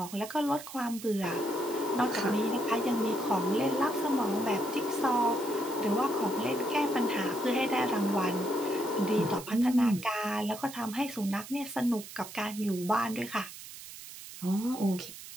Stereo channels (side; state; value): right; noise; hiss, 13 dB below the sound